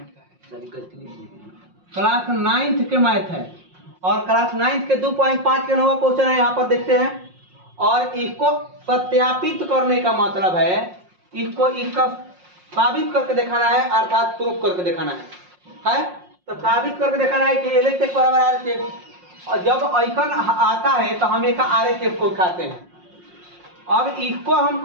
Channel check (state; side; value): late; left; 5.6 ms